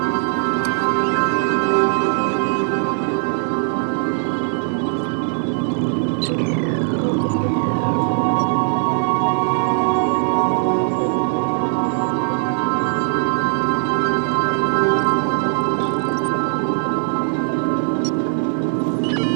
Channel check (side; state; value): left; silent; 55 dB below the other